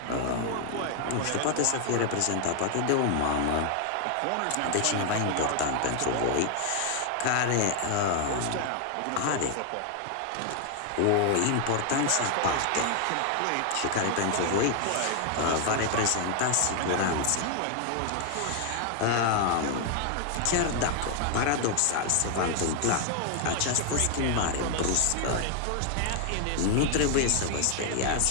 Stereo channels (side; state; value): both; different; correlation 0.00